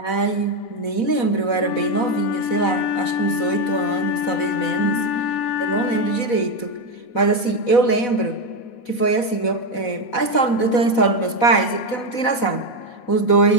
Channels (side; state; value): right; late; 4.1 ms